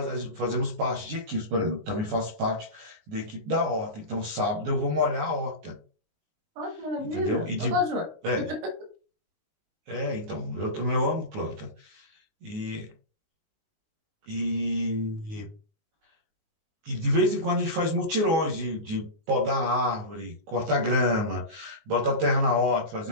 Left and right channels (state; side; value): late; left; 19 ms